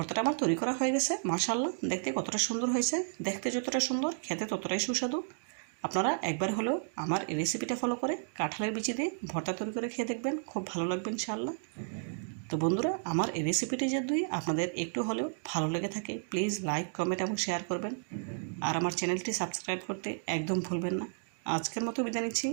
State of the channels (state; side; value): silent; left; digital silence